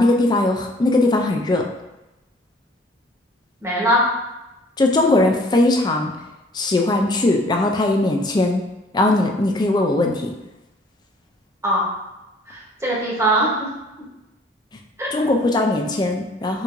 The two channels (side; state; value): both; normal; correlation 0.56